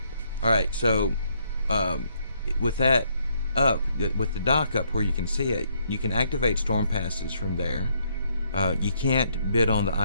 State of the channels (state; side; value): inverted; both; correlation -0.72